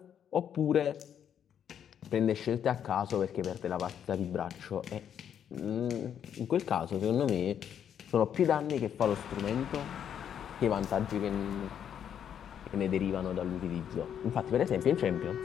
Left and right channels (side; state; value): right; quieter; 8.9 dB